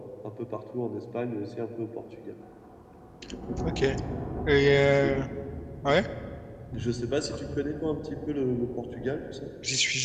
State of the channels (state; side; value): identical; both; correlation 1.00